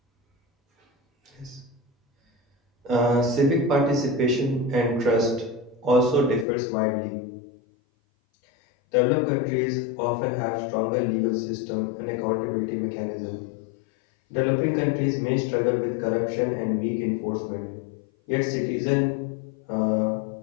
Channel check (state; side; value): drops out; right; at 6.5 s